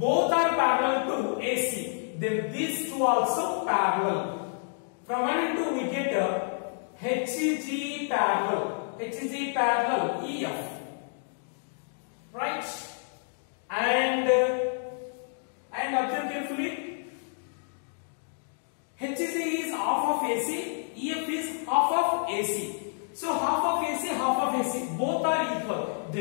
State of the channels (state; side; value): silent; right; digital silence